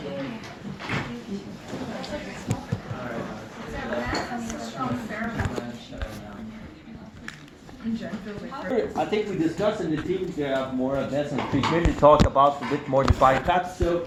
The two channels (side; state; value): both; identical; correlation 1.00